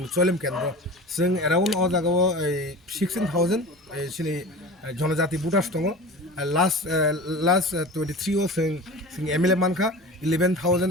चरिलाम केन्द्र जों एराउन्ड अ जागाव 16000 सिनि जनजाति भोटार्स दङ लास्ट 23 आव जों एमएलए मानखा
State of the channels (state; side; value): normal; both; correlation 0.35